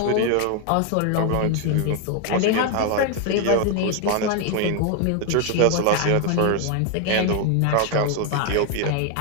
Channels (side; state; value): both; different; correlation 0.01